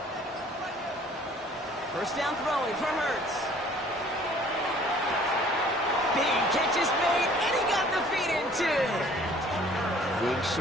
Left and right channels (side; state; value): both; normal; correlation 0.54